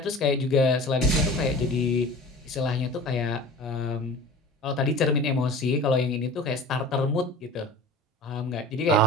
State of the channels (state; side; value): normal; both; correlation 0.38